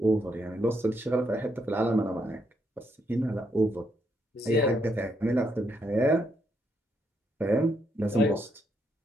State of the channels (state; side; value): normal; both; correlation 0.77